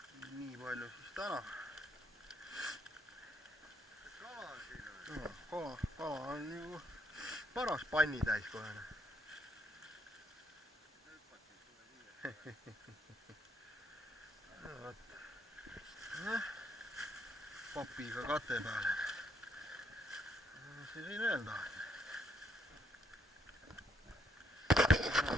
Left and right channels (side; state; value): both; normal; correlation 0.72